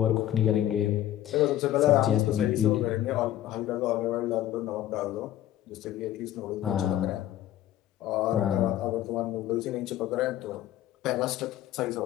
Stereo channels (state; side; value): quieter; right; 12.7 dB